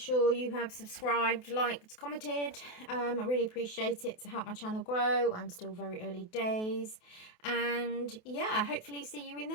you have subscribed, liked, commented. I really appreciate it to help my channel grow. I'm still very early days. And yeah, hopefully see you in the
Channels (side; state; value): right; late; 28 ms